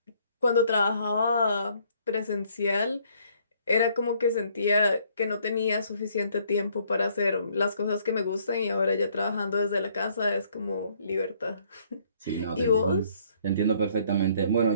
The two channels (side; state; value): both; inverted; correlation -0.64